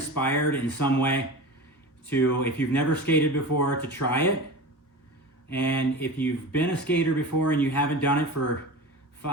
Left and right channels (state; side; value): normal; both; correlation 0.31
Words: in some way to, if you've never skated before, to try it. And if you've been a skater before and you haven't done it for